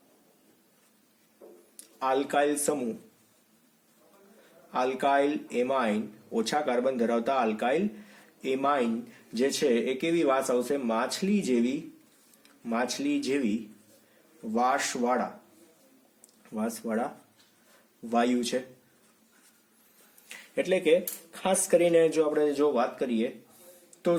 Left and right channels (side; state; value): both; identical; correlation 1.00